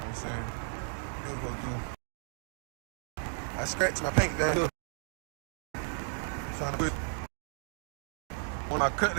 saying, what I'm supposed to do. I scratched my paint down here, trying to put one of my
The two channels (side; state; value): left; silent; 55 dB below the other